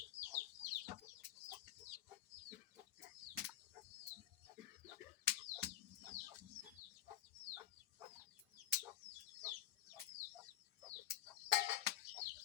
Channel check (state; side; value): quieter; right; 12.2 dB